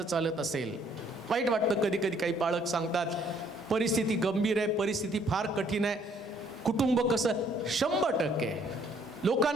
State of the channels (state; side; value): normal; both; correlation 0.64